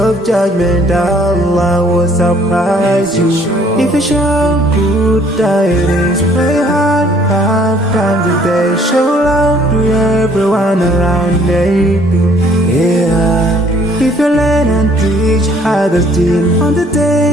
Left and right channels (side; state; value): both; normal; correlation 0.60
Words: judgment, Allah will surprise you. If you show good tidings, pray hard 5 times a day. Show love to everyone around you. Yeah. If you learn and teach others still on the